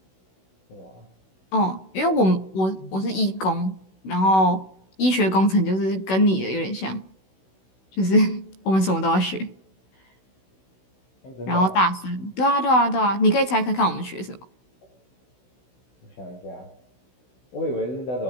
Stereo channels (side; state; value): right; late; 16 ms